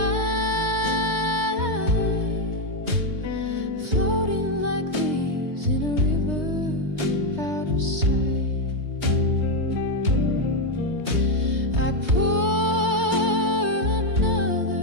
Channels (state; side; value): late; left; 3.2 ms